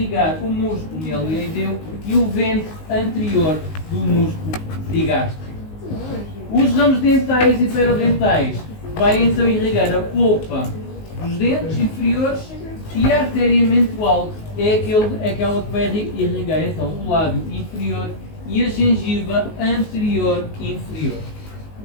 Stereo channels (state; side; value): late; right; 19 ms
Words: o músculo mieloideu e o vento anterior do músculo digástrico. Os ramos dentais e perodentais vai então irrigar a polpa dos dentes inferiores e a artéria mental é aquela que vai irrigar então o lábio inferior e a gengiva anterior e inferior.